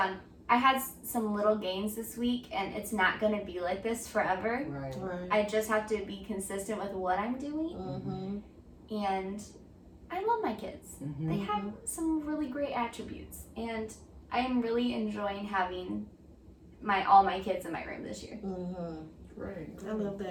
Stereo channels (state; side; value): identical; both; correlation 1.00